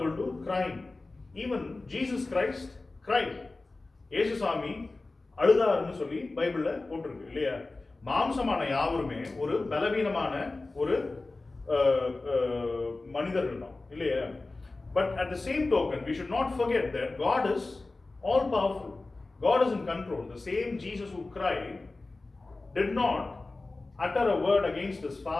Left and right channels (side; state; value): right; quieter; 3.3 dB